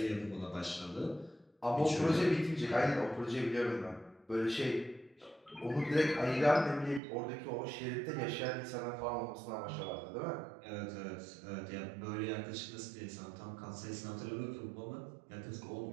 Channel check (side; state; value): left; drops out; at 7.0 s